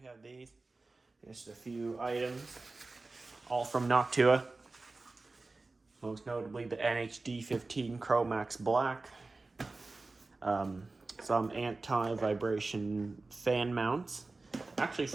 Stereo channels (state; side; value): quieter; left; 3.4 dB